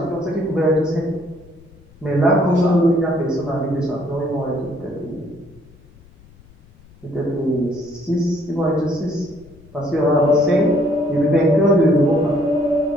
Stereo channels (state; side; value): noise; left; rumble, 26 dB below the sound